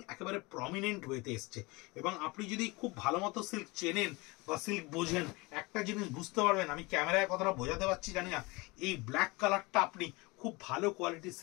একেবারে প্রমিনেন্ট ওয়েতে এসছে। এবং আপনি যদি খুব ভালো মতো সিল্ক চেনেন বা সিল্ক বোঝেন, একটা জিনিস বুঝতে পারবেন, আমি ক্যামেরায় কথাটা বোঝাতে পারছি জানি না, এই ব্ল্যাক কালারটা আপনি খুব ভালো কোয়ালিটির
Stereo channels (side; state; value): right; quieter; 24.7 dB